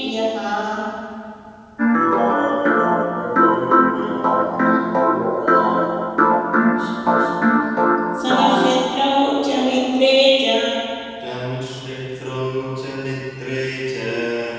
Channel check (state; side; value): identical; both; correlation 1.00